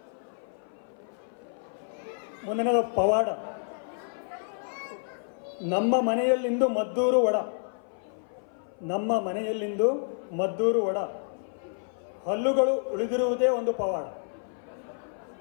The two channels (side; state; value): right; silent; 55 dB below the other